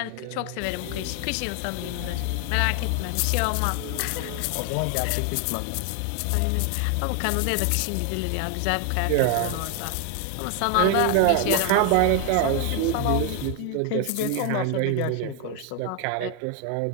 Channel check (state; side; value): different; both; correlation 0.01